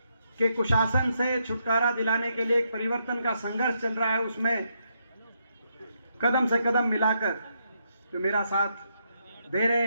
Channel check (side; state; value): both; inverted; correlation -0.79